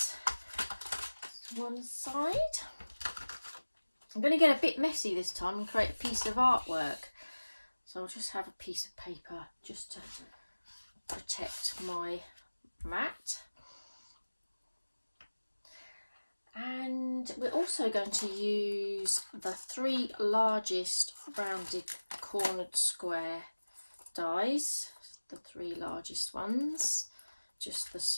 to one side. I'm going to get a bit messy this time and create a piece of artwork. So I'll just have a piece of paper just to protect my mat. And we're also going to use the 3 largest rounded cornered square dies, the 3 largest ones, just the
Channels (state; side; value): inverted; both; correlation -1.00